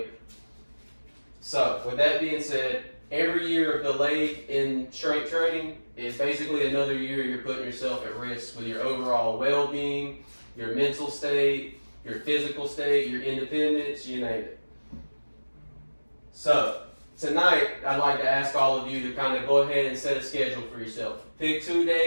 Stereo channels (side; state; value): both; inverted; correlation -1.00